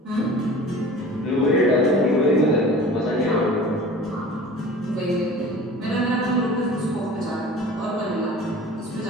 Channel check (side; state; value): both; normal; correlation 0.41